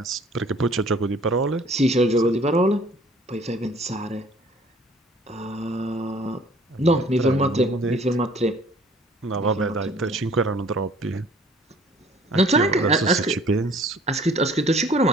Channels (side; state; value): both; normal; correlation 0.54